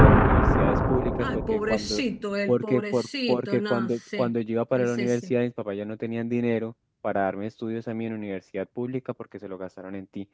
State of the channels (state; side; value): identical; both; correlation 1.00